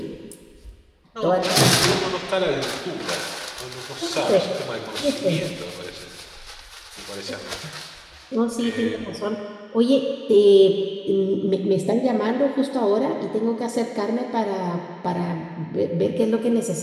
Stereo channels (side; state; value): both; identical; correlation 1.00